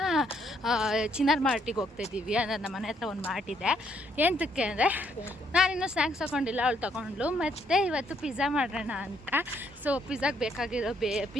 ಚಿನ್ನಾರ್ ಮಾರ್ಟಿಗೆ ಹೋಗ್ತಾಯಿದ್ದೀವಿ. ಅಂದರೆ ನಮ್ಮ ಮನೆ ಹತ್ರ ಒಂದು ಮಾರ್ಟ್ ಇದೆ. ಎಂತಕ್ಕೆ ಅಂದರೆ ನಾನಿನ್ನೂ ಸ್ನ್ಯಾಕ್ಸ್ ತೊಗೊಂಡಿಲ್ಲ, ಅವಳು ತೊಗೊಂಡ್ಲು. ಮತ್ತು ಇವತ್ತು ಪಿಜ್ಜಾ ಮಾಡೋಣ ಅಂತ. ಸೊ ಪಿಜ್ಜಾಗೆ ಬೇಕಾಗಿರೋ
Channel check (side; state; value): both; normal; correlation 0.71